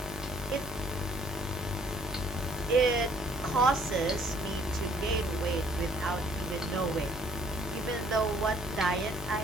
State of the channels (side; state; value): both; normal; correlation 0.62